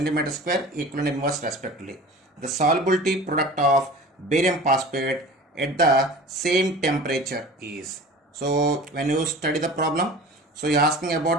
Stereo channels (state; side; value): normal; both; correlation 0.40